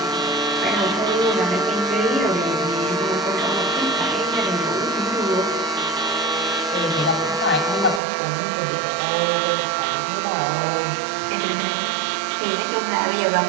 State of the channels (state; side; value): drops out; left; at 8.0 s